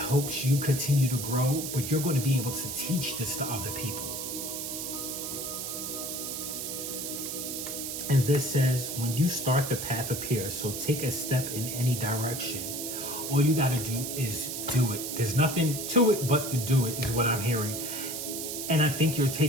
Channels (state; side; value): noise; right; hiss, 5 dB below the sound